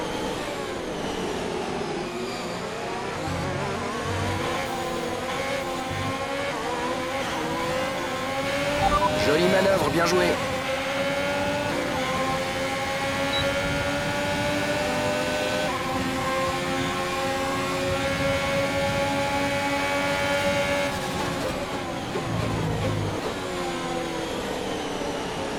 Jolie manœuvre, bien joué.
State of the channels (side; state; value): both; identical; correlation 1.00